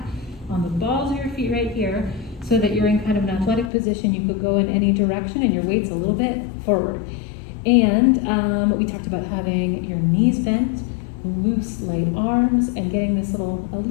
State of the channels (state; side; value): drops out; right; at 3.7 s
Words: on the balls of your feet right here so that you're in kind of an athletic position. You could go in any direction and your weight's a little bit forward. And we talked about having your knees bent, loose, light arms, and getting this a